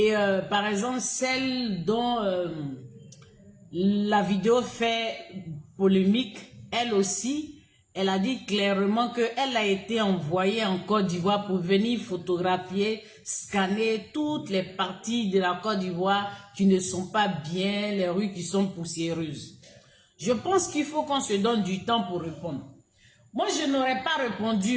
par exemple, celle dont la vidéo fait polémique, elle aussi, elle a dit clairement qu'elle a été envoyée en Côte d'Ivoire pour venir photographier, scanner toutes les parties de la Côte d'Ivoire qui ne sont pas bien, les rues qui sont poussiéreuses. Je pense qu'il faut qu'on se donne du temps pour répondre. Moi, je n'aurais pas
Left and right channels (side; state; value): both; identical; correlation 1.00